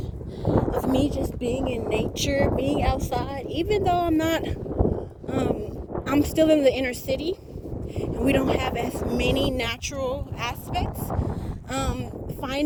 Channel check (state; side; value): identical; both; correlation 1.00